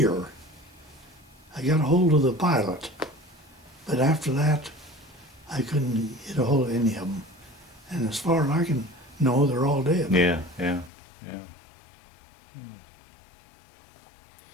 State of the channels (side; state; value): right; drops out; at 10.9 s